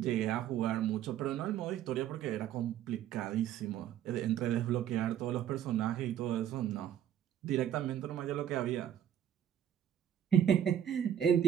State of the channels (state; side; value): quieter; left; 10.4 dB